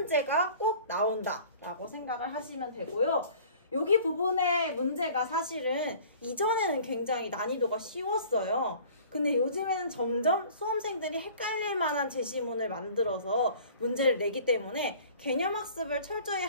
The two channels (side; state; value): both; inverted; correlation -0.48